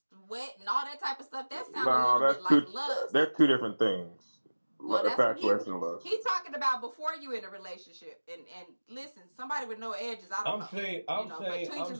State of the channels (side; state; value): both; inverted; correlation -1.00